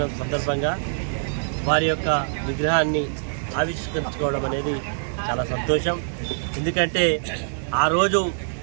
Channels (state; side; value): silent; left; 63 dB below the other